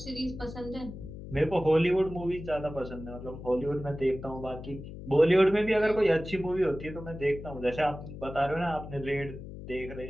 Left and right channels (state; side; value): noise; left; hum, 12 dB below the sound